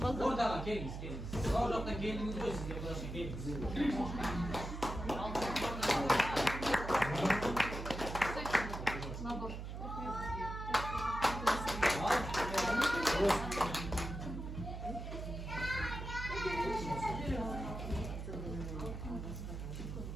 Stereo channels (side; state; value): right; noise; hum, 7 dB below the sound